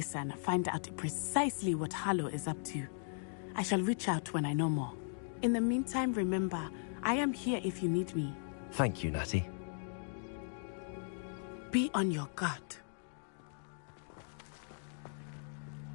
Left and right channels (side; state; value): right; silent; digital silence